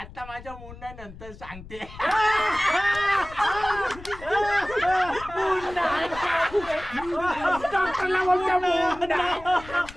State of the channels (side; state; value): left; noise; rumble, 16 dB below the sound